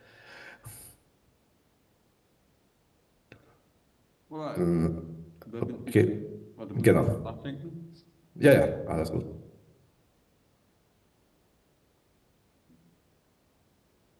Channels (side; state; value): both; identical; correlation 1.00